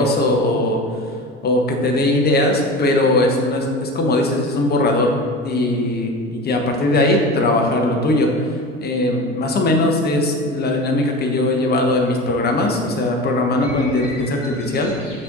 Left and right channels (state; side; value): normal; both; correlation 0.31